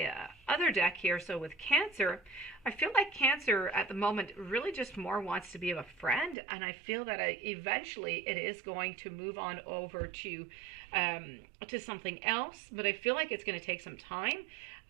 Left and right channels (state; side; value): drops out; left; at 6.4 s